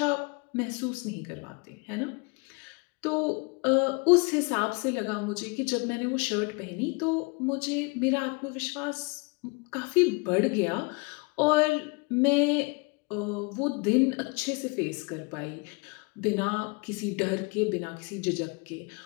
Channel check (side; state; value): right; quieter; 29.7 dB